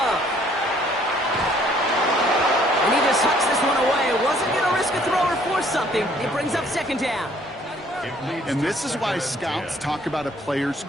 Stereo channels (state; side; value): normal; both; correlation 0.61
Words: And he just hucks this one away. Wasn't going to risk a throw or force something. It brings up 2nd down. And this is why scouts talk about a player's